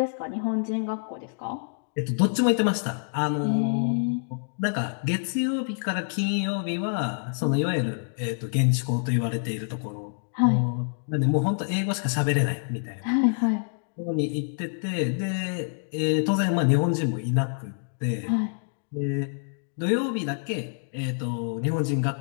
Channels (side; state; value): right; silent; digital silence